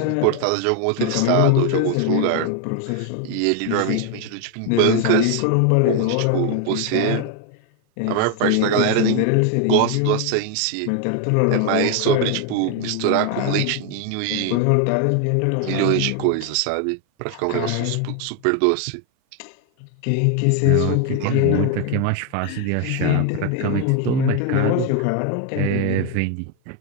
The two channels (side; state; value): both; different; correlation 0.01